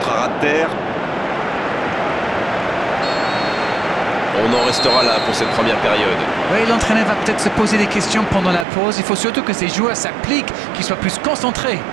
à ras de terre. On en restera là pour cette première période. Oui, l'entraîneur va peut-être se poser des questions pendant la pause. Il faut surtout que ces joueurs s'appliquent, qu'ils soient plus concentrés.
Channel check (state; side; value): drops out; left; at 8.7 s